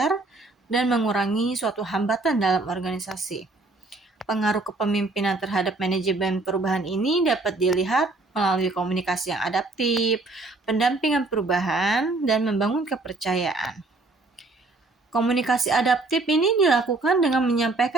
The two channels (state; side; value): quieter; left; 3.3 dB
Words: dan mengurangi suatu hambatan dalam organisasi. Pengaruh kepemimpinan terhadap manajemen perubahan ini dapat dilihat melalui komunikasi yang adaptif, pendampingan perubahan, dan membangun kepercayaan. Komunikasi adaptif ini dilakukan dengan